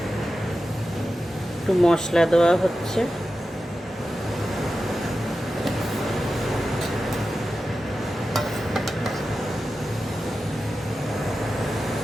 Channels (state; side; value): normal; both; correlation 0.92